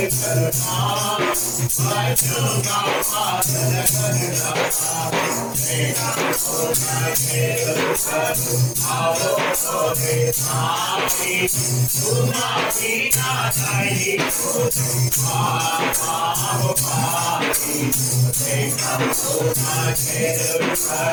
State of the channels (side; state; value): both; identical; correlation 1.00